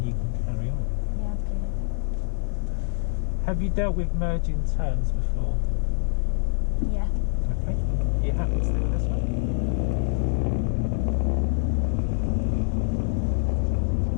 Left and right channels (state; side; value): silent; right; 60 dB below the other